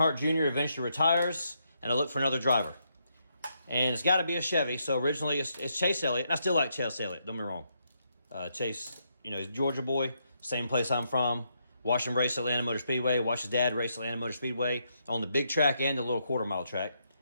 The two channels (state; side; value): inverted; both; correlation -0.78